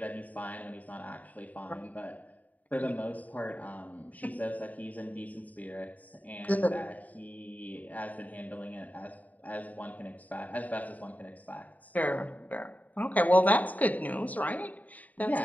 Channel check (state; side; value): late; right; 0.074 ms